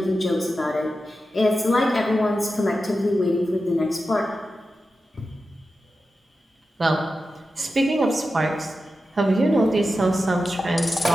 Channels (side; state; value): both; normal; correlation 0.91